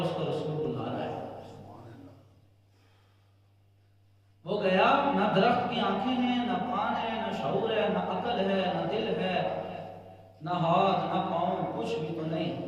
اس کا رسول بلا رہا ہے۔ وہ گیا، نہ درخت کی آنکھیں ہیں، نہ کان ہے، نہ شعور ہے، نہ عقل ہے، نہ دل ہے، نہ ہاتھ نہ پاؤں، کچھ بھی تو نہیں،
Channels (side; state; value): both; identical; correlation 1.00